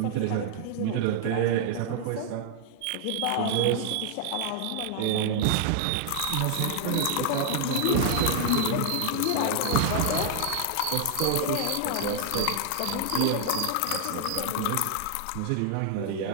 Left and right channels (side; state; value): both; different; correlation 0.00